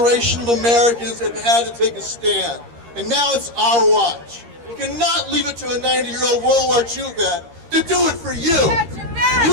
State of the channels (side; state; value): left; late; 13 ms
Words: of Americans have had to take a stand. And now it's our watch. You cannot leave it to a 90-year-old World War II vet to do it for you.